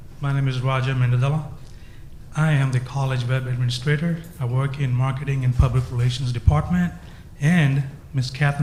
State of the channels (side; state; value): both; identical; correlation 1.00